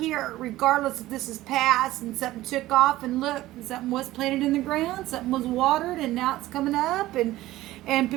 regardless if this is past and something took off, and look, something was planted in the ground, something was watered, and now it's coming up, and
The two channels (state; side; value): quieter; left; 16.3 dB